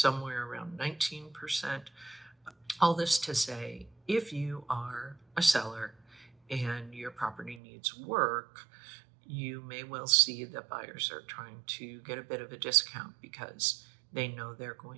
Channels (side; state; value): left; drops out; at 7.6 s